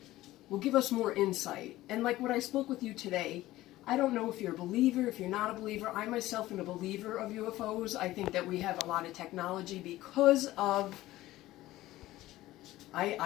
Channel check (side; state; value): right; quieter; 16.3 dB